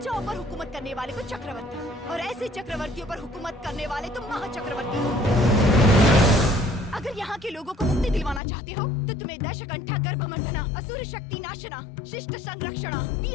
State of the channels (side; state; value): right; drops out; at 8.4 s